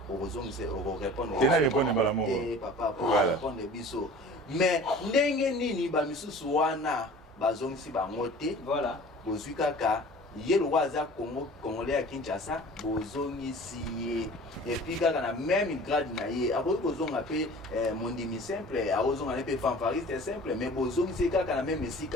orozong c'est répondre. C'est na répondre malamu. Papa pour répondre biso. Mais ndenge nini ba misusu wana bazong si ba ngote voilà bozwi kaka ye lo waza Congo congolais à Kinshasa bozongi si et puis kaka na même grade na ye akoki kozonga pe mondimi simple akozonga ne pe fanfariste simple mais bozongi si kaka na même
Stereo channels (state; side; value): normal; both; correlation 0.43